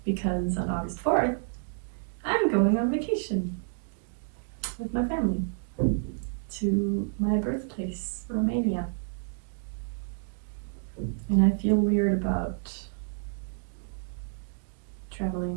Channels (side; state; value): left; silent; digital silence